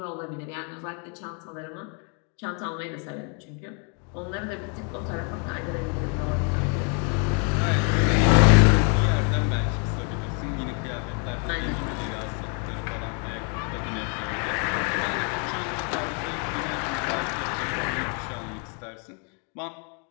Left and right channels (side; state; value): right; quieter; 37.9 dB